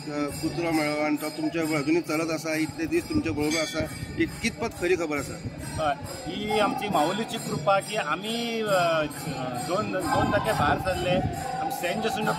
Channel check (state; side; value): identical; both; correlation 1.00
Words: कुत्रो मेळ्ळो आनी तो तुमच्या अजुनूय चलत आसा, इतले दीस तुमच्या बरोबर आसा, ही कितपत खरी खबर आसा? हय, ही आमची माऊलीची कृपा की आमी 2 तारखे भायर सरले। आमी सेंट जेसुंडो